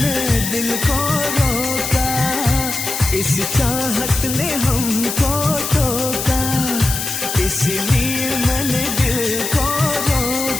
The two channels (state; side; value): noise; left; hiss, 4 dB below the sound